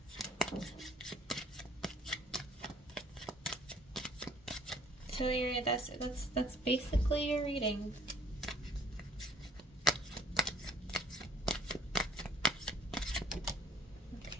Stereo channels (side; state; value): both; normal; correlation 0.58